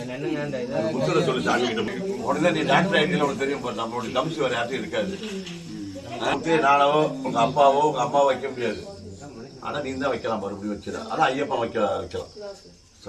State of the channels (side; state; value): both; identical; correlation 1.00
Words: உடனே நீ டாக்டர் ஐடியில் உனக்கு தெரியும். நம்மளுடைய தம்சி வேற யார்ட்டும் இருக்காது. நானோ உங்க அப்பாவோ உங்க அம்மாவோ வைக்க முடியாது. ஆனால் நீ தான் வைக்கலாம், மறுபடியும் வச்சிடலாம். ஆனால் ஐயப்பன் வைக்கலாம்